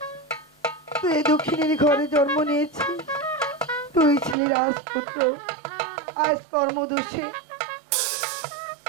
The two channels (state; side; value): drops out; left; at 4.4 s